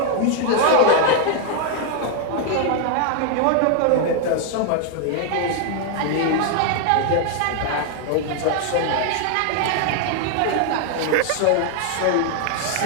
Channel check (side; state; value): both; different; correlation 0.00